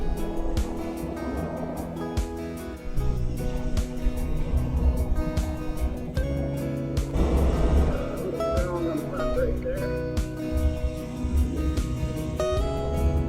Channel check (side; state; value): both; identical; correlation 1.00